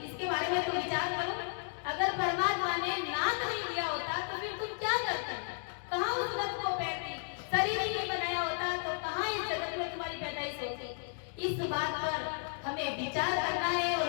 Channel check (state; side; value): silent; right; 55 dB below the other